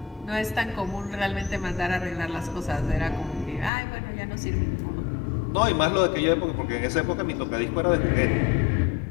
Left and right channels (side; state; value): right; drops out; at 3.7 s